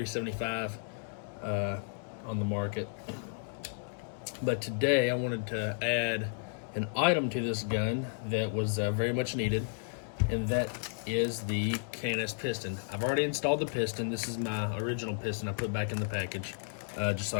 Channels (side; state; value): right; silent; 56 dB below the other